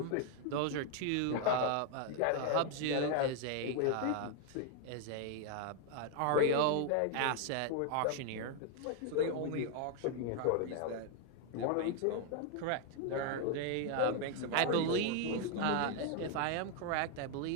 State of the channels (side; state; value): both; different; correlation 0.01